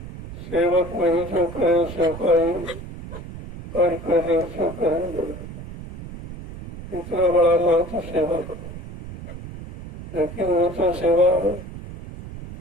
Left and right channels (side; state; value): right; noise; rumble, 12 dB below the sound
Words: सेवक वही जो करे सेवकाई और करे सो करेंगे। इतना बड़ा महत्व सेवक, लेकिन वो तो सेवा